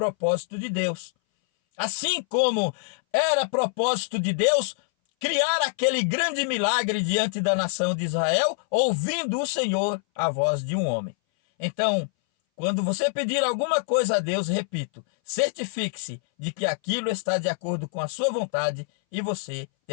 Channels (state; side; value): silent; right; 60 dB below the other